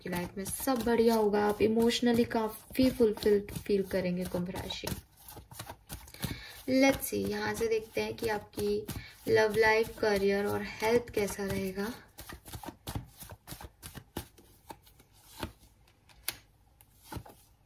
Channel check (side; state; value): both; identical; correlation 1.00